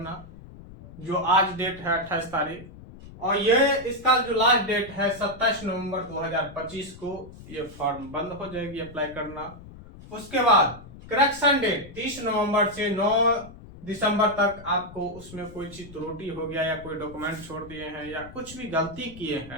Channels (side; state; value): left; noise; rumble, 17 dB below the sound